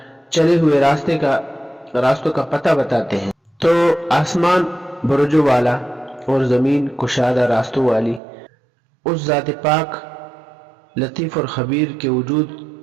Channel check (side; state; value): left; drops out; at 8.2 s